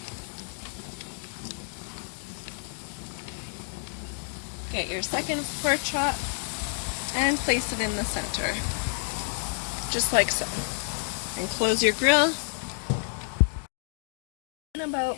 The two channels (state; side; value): silent; right; 59 dB below the other